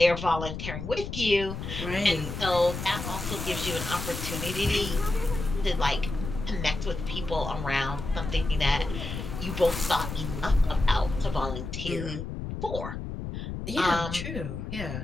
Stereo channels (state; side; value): noise; left; rumble, 6 dB below the sound